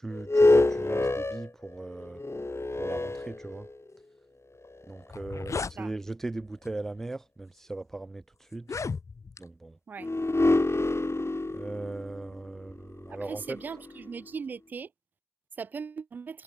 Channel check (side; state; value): both; normal; correlation 0.92